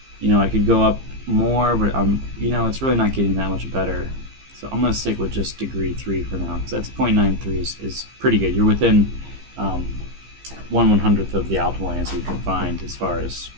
I could go up more, but it's really not getting that much better. So I'm going to stick with just degree 3 for now, because that's 0.93 is pretty good. You're within 1/100th of the optimal answer you can find as far as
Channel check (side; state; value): left; late; 15 ms